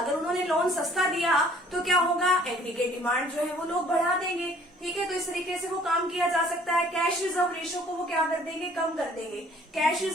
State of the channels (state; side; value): normal; both; correlation 0.56